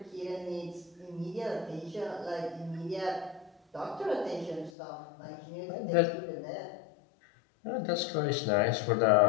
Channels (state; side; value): drops out; right; at 4.7 s